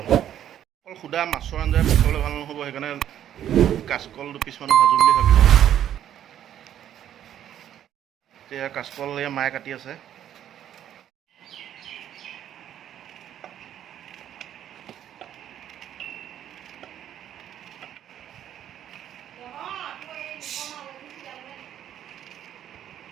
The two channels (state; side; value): quieter; left; 10.7 dB